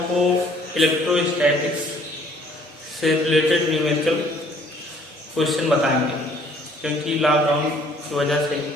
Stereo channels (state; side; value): normal; both; correlation 0.58